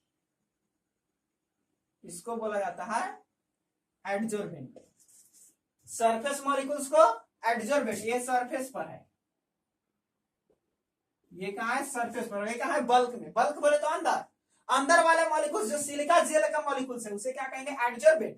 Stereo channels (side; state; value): both; identical; correlation 1.00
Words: इसको बोला जाता है एडजॉर्बेंट। सरफेस मॉलिक्यूल्स को एडजॉर्बेंट, ये सरफेस पर है, ये कहां है? सरफेस पर। ये कहां है? बल्क में। बल्क बोले तो अंदर, अंदर वाले मॉलिक्यूल्स जो सिलिका जेल का मॉलिक्यूल्स है उसे क्या कहेंगे?